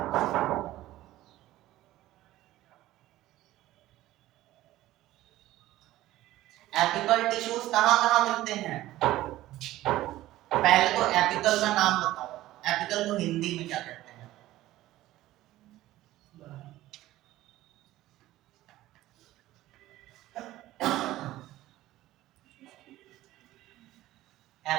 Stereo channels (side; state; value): left; quieter; 15.6 dB